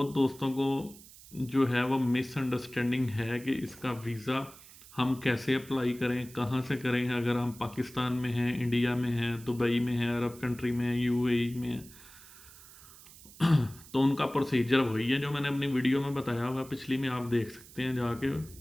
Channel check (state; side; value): noise; right; hiss, 20 dB below the sound